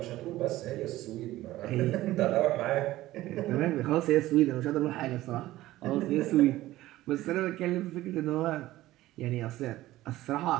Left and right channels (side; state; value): left; quieter; 16.1 dB